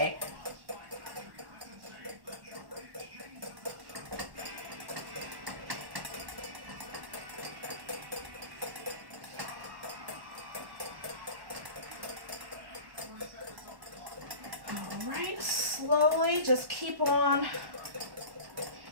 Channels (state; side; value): late; left; 1.1 ms